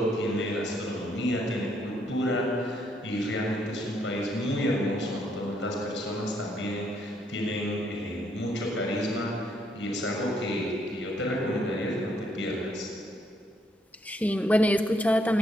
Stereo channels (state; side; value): normal; both; correlation 0.72